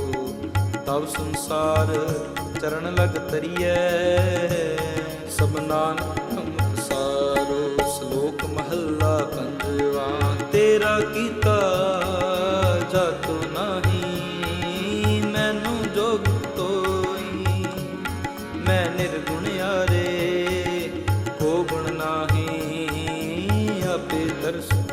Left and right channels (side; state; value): both; identical; correlation 1.00